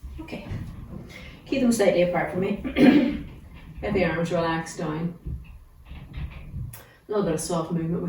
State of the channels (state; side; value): identical; both; correlation 1.00